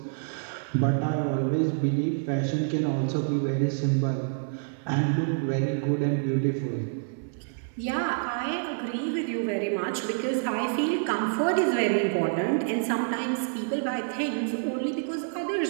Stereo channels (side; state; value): left; silent; 58 dB below the other